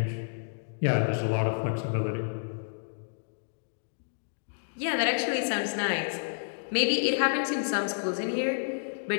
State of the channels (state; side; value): silent; right; digital silence